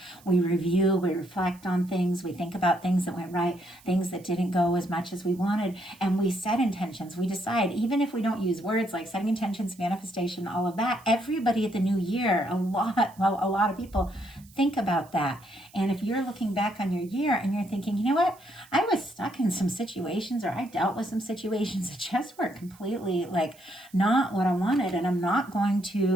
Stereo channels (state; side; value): noise; right; hiss, 26 dB below the sound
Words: we review, we reflect on things, we think about things that went right, things that didn't go as much as we wanted, and we set intentions. We decide, even if we don't use words like setting intentions, manifestation, all of that, everybody at the new year, a lot of people think about that. And if you're looking back on your year and you're thinking, you know what, I was stuck in some situations, or I dealt with some situations that just were completely like not what I wanted, and I'm not going